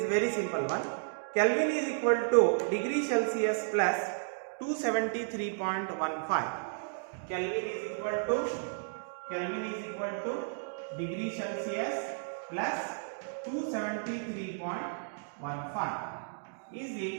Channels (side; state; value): left; silent; digital silence